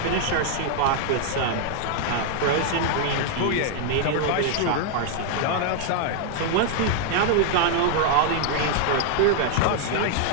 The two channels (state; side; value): different; both; correlation 0.00